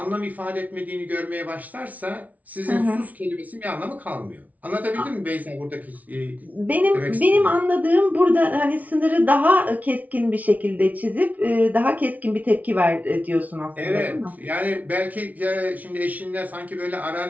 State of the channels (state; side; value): late; left; 0.072 ms